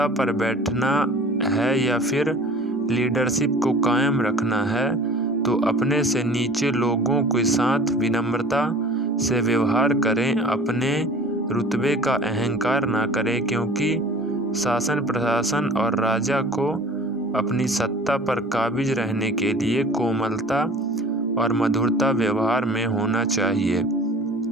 पर बैठना है या फिर लीडरशिप को कायम रखना है तो अपने से नीचे लोगों के साथ विनम्रता से व्यवहार करें। अपने रुतबे का अहंकार ना करें, क्योंकि शासन प्रशासन और राजा को अपनी सत्ता पर काबिज रहने के लिए कोमलता और मधुरता व्यवहार में होना चाहिए।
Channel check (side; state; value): both; normal; correlation 0.44